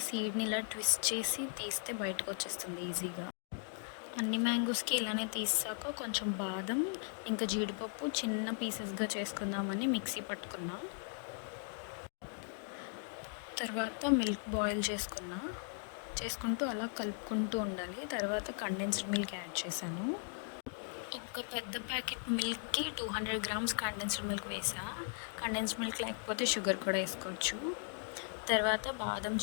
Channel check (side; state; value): right; silent; 53 dB below the other